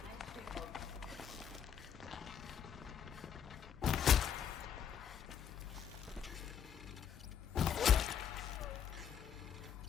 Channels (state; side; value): quieter; right; 8.4 dB